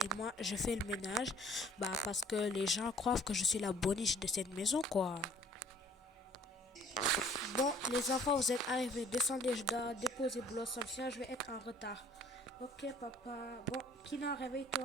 moi, je fais le ménage. Bah, parce que les gens croient que je suis la boniche de cette maison, quoi. Bon, les enfants, vous êtes arrivés. Descendez, je dois déposer Blossom, sinon je vais être en retard. Ok, papa. Bon, Kina,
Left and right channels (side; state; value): both; normal; correlation 0.55